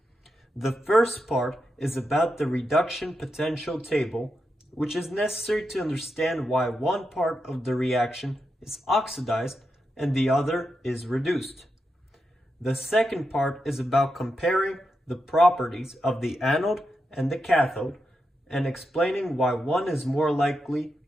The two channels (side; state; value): both; normal; correlation 0.86